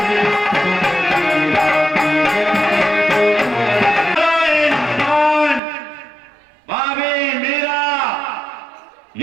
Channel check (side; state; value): left; drops out; at 5.6 s